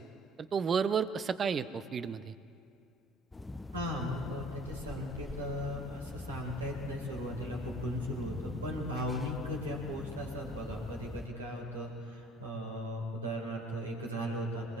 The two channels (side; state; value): both; normal; correlation 0.55